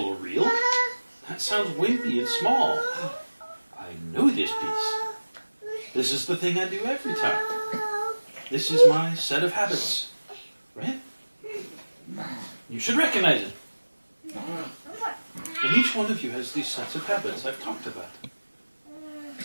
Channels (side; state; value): both; inverted; correlation -1.00